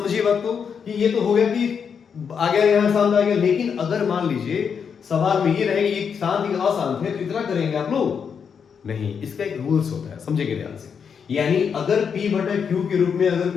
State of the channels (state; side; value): quieter; right; 6.7 dB